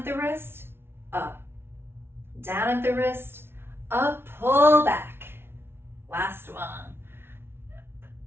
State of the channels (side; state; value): left; late; 0.12 ms